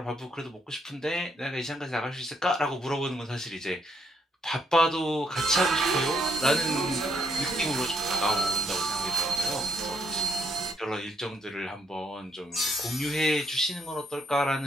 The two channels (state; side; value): normal; both; correlation 0.74